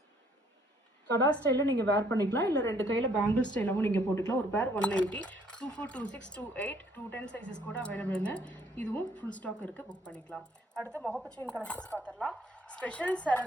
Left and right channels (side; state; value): both; normal; correlation 0.64